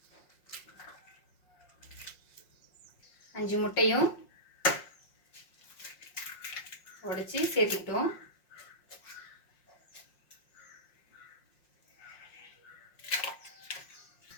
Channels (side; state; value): right; late; 5.6 ms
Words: அஞ்சு முட்டையும் உடைச்சி சேர்த்திக்கிட்டோம்.